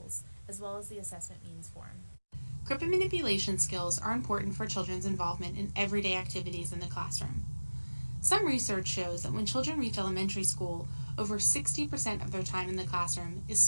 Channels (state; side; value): inverted; both; correlation -1.00